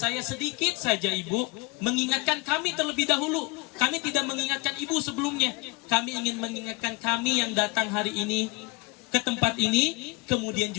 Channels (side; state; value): right; quieter; 25.7 dB